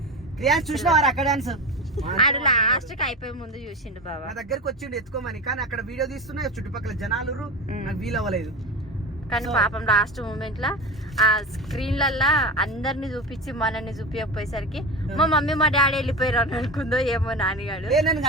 చూసినవారు అక్కడ డాన్స్ ఆడు లాస్ట్ కి అయిపోయే ముందు చూసిండు బాబా. నా దగ్గరకు వచ్చిండు ఎత్తుకోమని, కానీ అక్కడ వీడియో తీస్తున్నా చుట్టుపక్కల జనాలు నాకు వీలవ్వలేదు. కానీ పాపం లాస్ట్ మూమెంట్ లా ఆ స్క్రీన్లల్లా అందరిని చూపించి మనల్ని చూపించకపోయేసరికి మా మమ్మీ మా డాడీ వెళ్ళిపోయారు అని అనుకుందో ఏమో నాన్నగాడు. నేను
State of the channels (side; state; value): both; normal; correlation 0.25